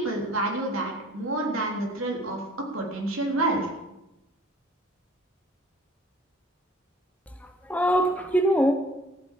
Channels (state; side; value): normal; both; correlation 0.52